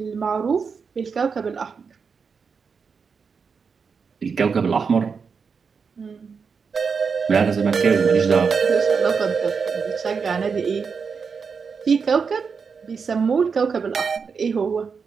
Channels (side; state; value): left; quieter; 5.6 dB